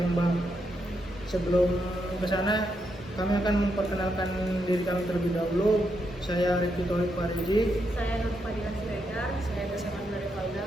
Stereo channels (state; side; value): normal; both; correlation 0.81